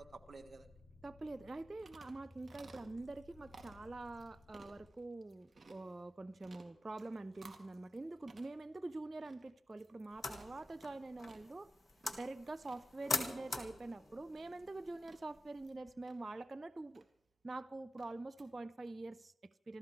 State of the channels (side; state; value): both; normal; correlation 0.93